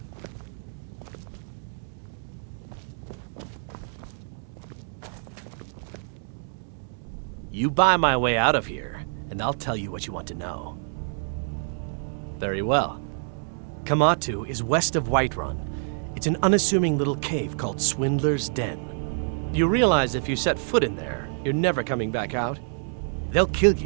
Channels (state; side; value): silent; left; digital silence